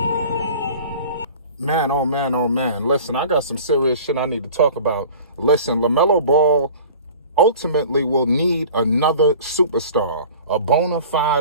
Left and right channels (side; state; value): both; inverted; correlation -0.43